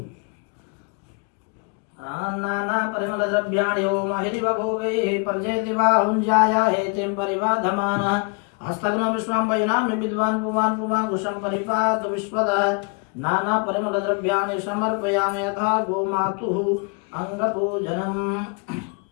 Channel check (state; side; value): quieter; right; 34.6 dB